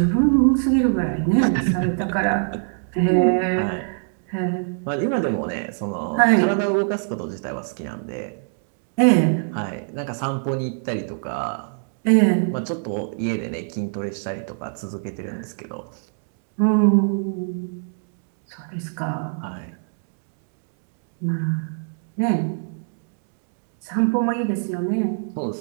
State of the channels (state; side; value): silent; left; 63 dB below the other